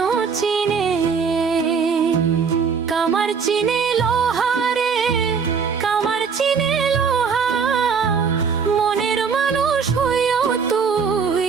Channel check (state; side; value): quieter; left; 5.9 dB